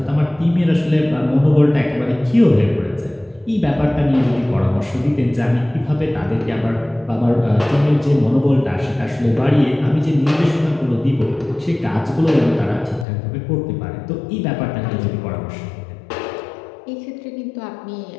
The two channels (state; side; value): drops out; right; at 13.1 s